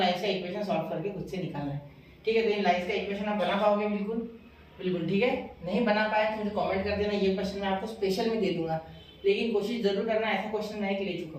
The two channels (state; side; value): identical; both; correlation 1.00